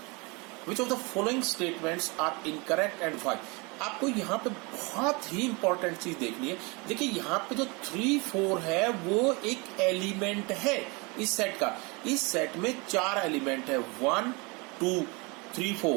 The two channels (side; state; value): left; quieter; 28.3 dB